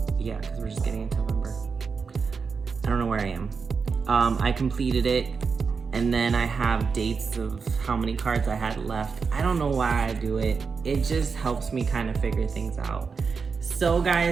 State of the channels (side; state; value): left; quieter; 5.3 dB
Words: yeah, because we're just getting into November. I don't know where I am. I completed it, and then I have dates of how many cards I had left. I don't know why I do it. It just helps me kind of figure things out. So